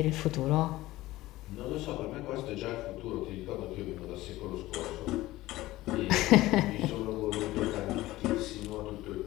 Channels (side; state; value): right; quieter; 17.4 dB